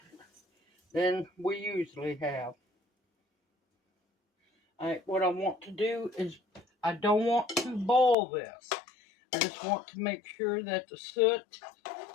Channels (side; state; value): right; drops out; at 8.2 s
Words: than we usually have. What I want to do is, I don't want to boil this. I just want to make sure that the soot